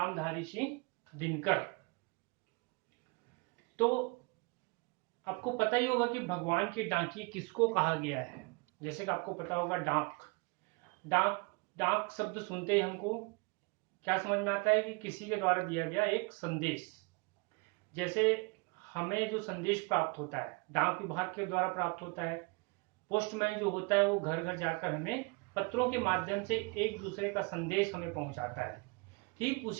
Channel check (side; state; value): left; quieter; 29.8 dB